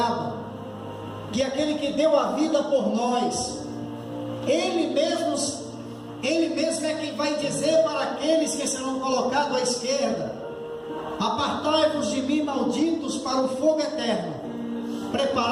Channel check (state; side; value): identical; both; correlation 1.00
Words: que é aquele que deu a vida por nós, Ele mesmo é quem vai dizer para aqueles que serão colocados à esquerda: apartai-vos de mim, malditos, para o fogo eterno,